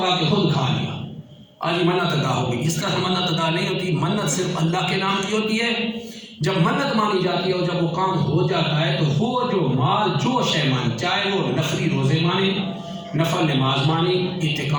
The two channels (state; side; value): identical; both; correlation 1.00